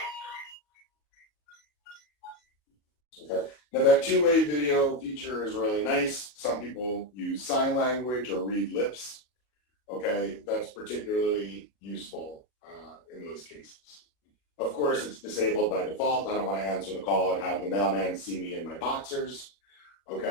that. Okay, now that two-way video feature is really nice. Some people use sign language or read lips. Okay, that's particularly useful in those cases. Of course, it's disabled by default. I don't want to answer the call and have the mailman see me in my boxers.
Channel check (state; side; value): late; right; 40 ms